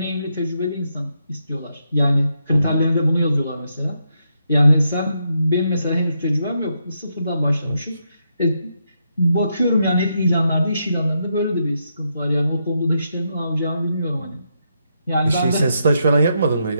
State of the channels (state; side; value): inverted; both; correlation -0.81